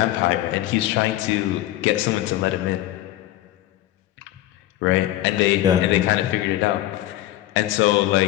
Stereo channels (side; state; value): right; quieter; 14.8 dB